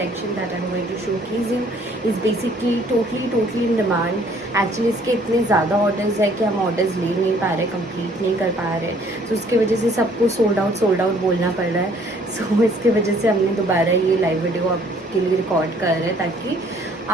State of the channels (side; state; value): both; normal; correlation 0.60